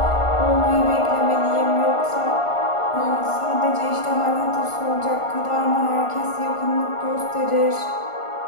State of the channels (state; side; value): late; right; 1.4 ms